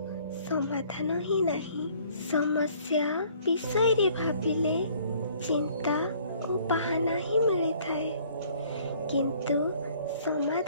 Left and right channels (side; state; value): both; inverted; correlation -0.58